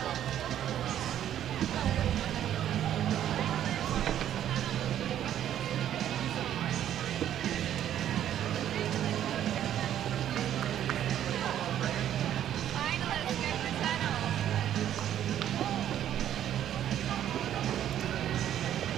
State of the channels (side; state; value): left; quieter; 10.9 dB